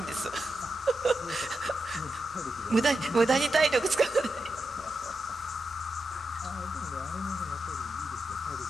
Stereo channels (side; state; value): both; normal; correlation 0.88